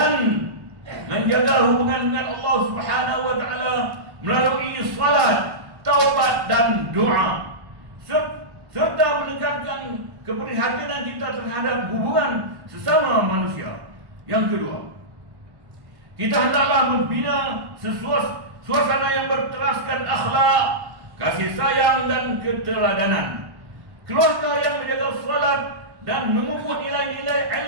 menjaga hubungan dengan Allah Subhanahu wa taala melalui salat, taubat dan doa, serta meningkatkan keprihatinan kita terhadap hubungan sesama manusia. Yang kedua, kita hendaklah membina suasana yang berteraskan akhlak, kasih sayang dan keteladanan. Keluarga yang menjaga salat dan memupuk nilai-nilai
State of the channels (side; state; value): left; late; 1.1 ms